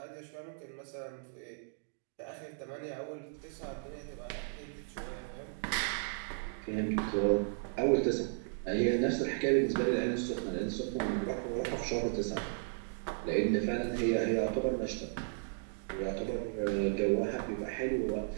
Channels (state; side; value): silent; left; digital silence